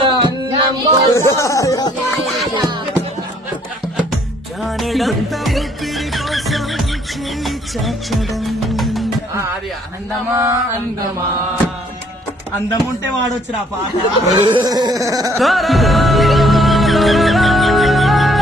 అది అందమా అందమా అందం ఉంటే వాడొచ్చురా పాట.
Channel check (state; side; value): normal; both; correlation 0.63